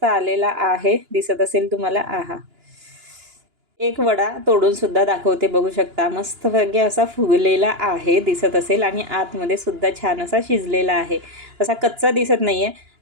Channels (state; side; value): late; left; 2.9 ms